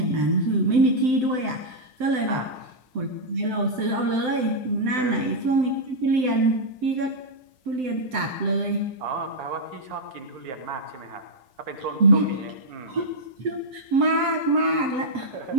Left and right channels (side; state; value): left; late; 7.8 ms